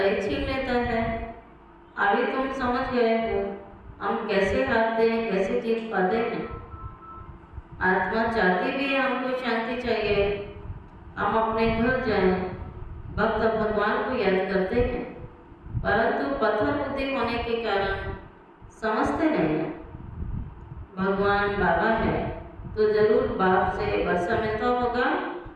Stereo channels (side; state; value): both; identical; correlation 1.00